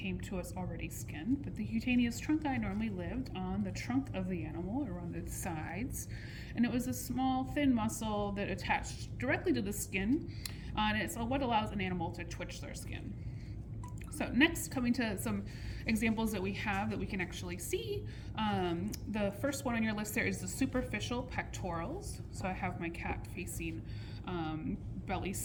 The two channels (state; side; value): identical; both; correlation 1.00